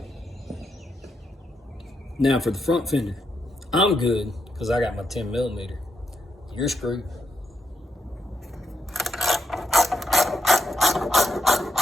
Now for the front fender, I'm good because I got my 10mm. You're screwed.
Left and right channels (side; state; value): both; normal; correlation 0.81